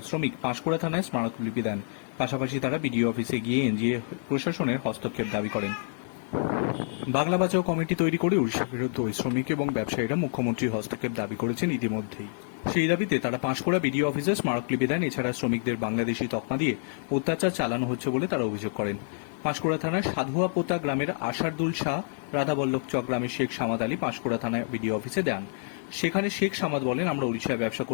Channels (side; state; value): right; silent; digital silence